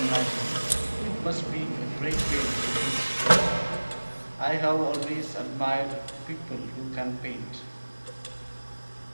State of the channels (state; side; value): inverted; both; correlation -1.00